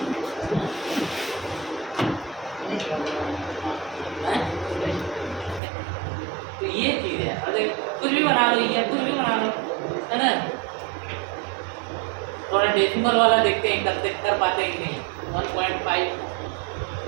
तो ये चीज है अगर कुछ भी बना लो ये कुछ भी बना लो है ना। थोड़ा डेसिमल वाला देखते हैं कर पाते हैं कि नहीं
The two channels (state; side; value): drops out; left; at 5.6 s